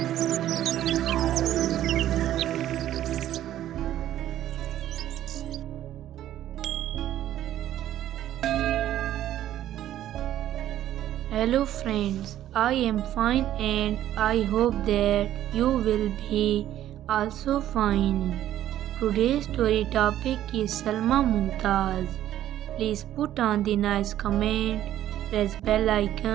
friends, I am fine and I hope that you will be also fine. Today's story topic is Salma Mumtaz. Please put on the nice comment, press bell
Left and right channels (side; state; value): left; quieter; 12.4 dB